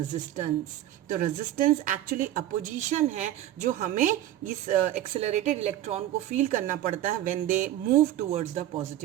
तो रेजिस्टेंस एक्चुअली अपोजिशन है जो हमें इस एक्सेलरेटेड इलेक्ट्रॉन को फील करना पड़ता है when they move towards the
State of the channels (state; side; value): quieter; left; 13.0 dB